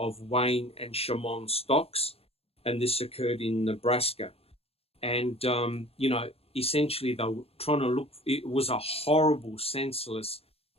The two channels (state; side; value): late; right; 0.29 ms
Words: Wayne and Shamon Stocks, and this occurred in Nebraska. And essentially they were trying to look. It was a horrible, senseless